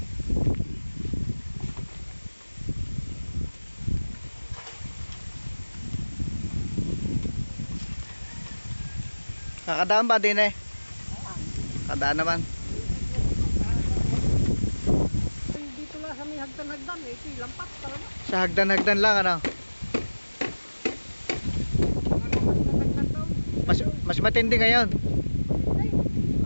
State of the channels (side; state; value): both; inverted; correlation -1.00